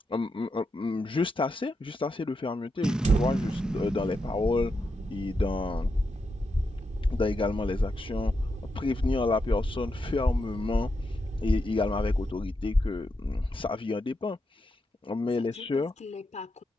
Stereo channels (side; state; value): both; normal; correlation 0.85